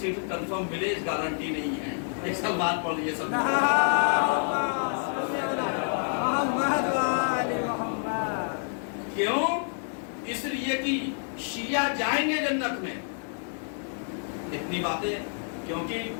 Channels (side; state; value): right; silent; 59 dB below the other